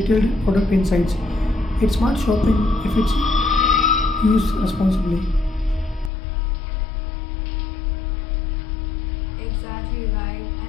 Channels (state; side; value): drops out; right; at 6.1 s